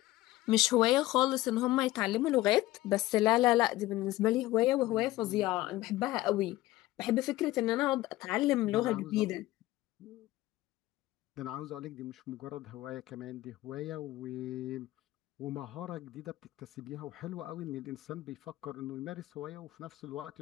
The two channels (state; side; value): quieter; right; 17.2 dB